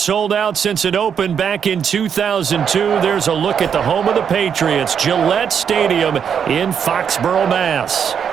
out since it opened back in 2002, there's a look at the home of the Patriots, Gillette Stadium in Foxborough, Mass.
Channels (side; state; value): left; quieter; 7.6 dB